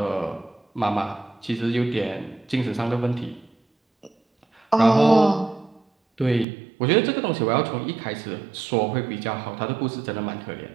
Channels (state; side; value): drops out; left; at 6.5 s